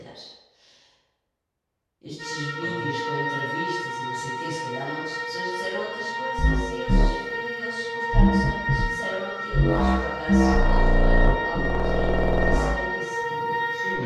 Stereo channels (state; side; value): identical; both; correlation 1.00